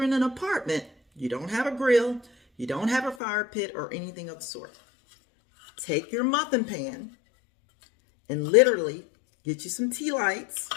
in an apartment, you don't have a grill, you don't have a fire pit or anything of the sort, take your muffin pan and literally get you some tea lights,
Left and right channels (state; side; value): drops out; right; at 3.2 s